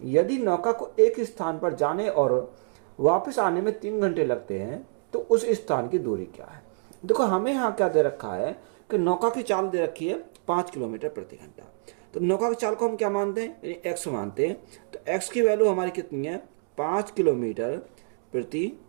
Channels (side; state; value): left; silent; digital silence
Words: यदि नौका को एक स्थान पर जाने और वापस आने में 3 घंटे लगते हैं तो उस स्थान की दूरी क्या है। देखो, हमें यहाँ क्या दे रखा है कि नौका की चाल दे रखी है 5 किलोमीटर प्रति घंटा। तो नौका की चाल को हम क्या मानते हैं, यानी एक्स मानते हैं। तो एक्स की वैल्यू हमारी कितनी है, 5 किलोमीटर प्रति